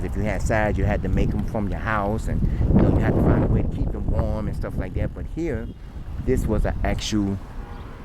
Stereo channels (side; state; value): both; identical; correlation 1.00